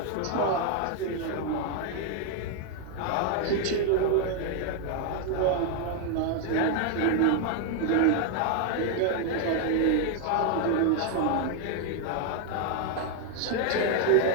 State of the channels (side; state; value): both; different; correlation 0.00